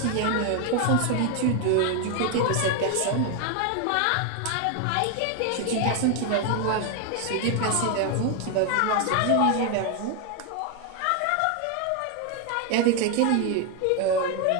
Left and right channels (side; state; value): both; different; correlation 0.01